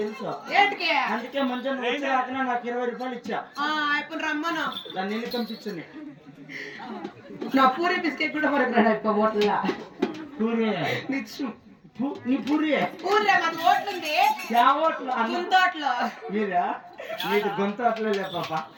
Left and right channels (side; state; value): both; identical; correlation 1.00